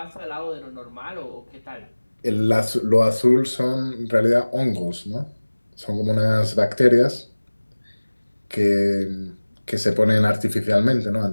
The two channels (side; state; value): both; inverted; correlation -1.00